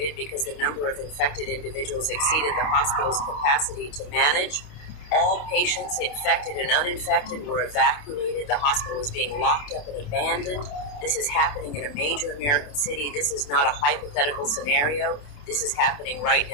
because the number of infected individuals exceeded the hospital's capacity to manage. All patients, infected and uninfected, were evacuated. The hospital was being locked up and abandoned. This is happening in a major American city. This is not a hypothetical scenario. This is happening right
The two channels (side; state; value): right; late; 28 ms